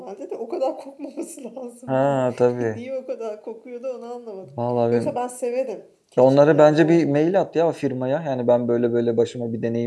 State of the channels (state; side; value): identical; both; correlation 1.00